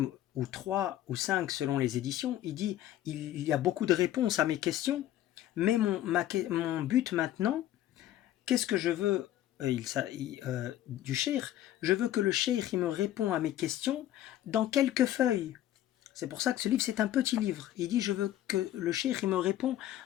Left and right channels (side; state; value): right; quieter; 12.9 dB